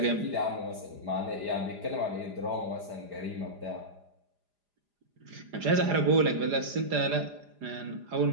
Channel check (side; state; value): left; late; 4.9 ms